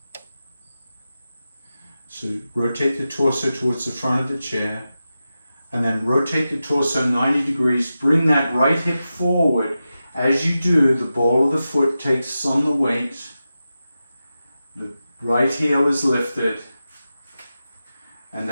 So rotate the torso towards the front of the chair. And then rotate the torso 90 degrees. Bring that right hip forward. As you do, the ball of the foot takes on the weight. The right heel is lifted. And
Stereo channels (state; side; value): inverted; both; correlation -0.92